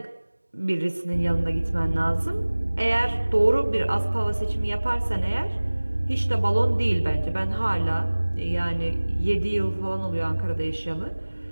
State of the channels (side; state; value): both; inverted; correlation -1.00